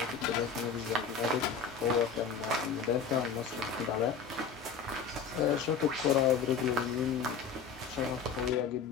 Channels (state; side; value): quieter; right; 6.1 dB